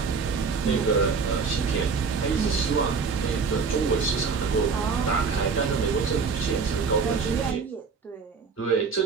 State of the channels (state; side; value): quieter; left; 5.2 dB